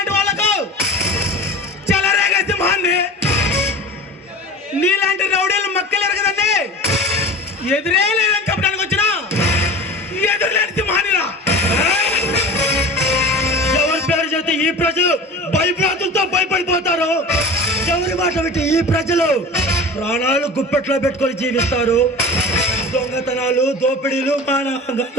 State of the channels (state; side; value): normal; both; correlation 0.35